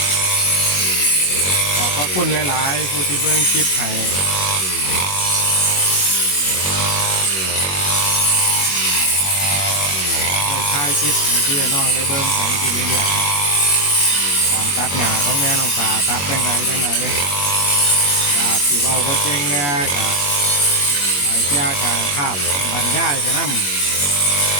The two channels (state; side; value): late; right; 21 ms